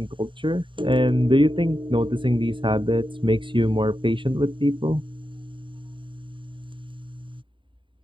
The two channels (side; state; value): left; late; 0.24 ms